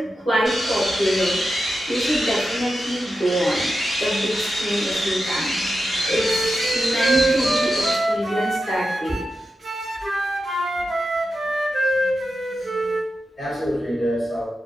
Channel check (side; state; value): both; normal; correlation 0.90